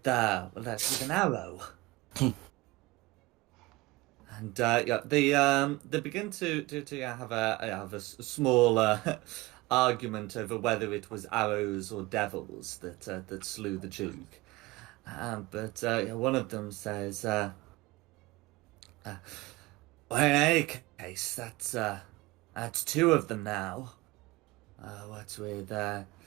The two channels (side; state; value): left; quieter; 21.3 dB